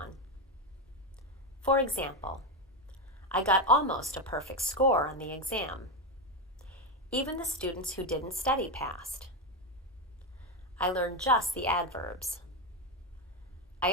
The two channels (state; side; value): normal; both; correlation 0.10